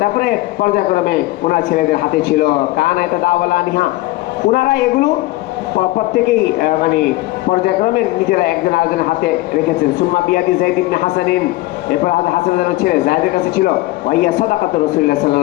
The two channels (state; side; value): quieter; right; 18.7 dB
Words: তারপরে পর্যায়ক্রমে ওনার ছেলেদের হাতে ছিল। কানা ইয়াতাদাওয়ালানিহা, ওনারা এগুলো প্রত্যেকেই মানে পর্যায়ক্রমে নিজেরা একজন আরেকজনের হাতে রেখেছেন। সুম্মা বিয়াদি যায়েদ ইবনে হাসানিন, এরপর হাসানের ছেলে যায়েদের কাছে ছিল। ওয়াইয়া সাদাকাতু রাসূলুল্লাহ